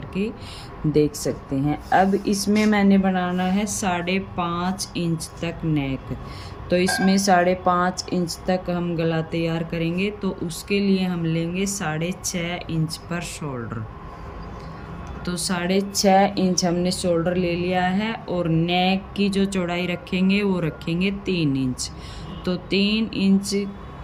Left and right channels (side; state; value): both; identical; correlation 1.00